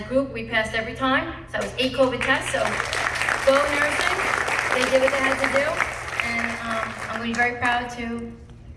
group, we passed every time. So it was 8 COVID tests, so go nursing. They did what they had to do, and I'm going to be very proud to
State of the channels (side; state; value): both; identical; correlation 1.00